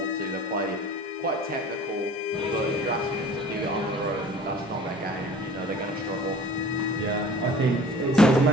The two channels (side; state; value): both; normal; correlation 0.46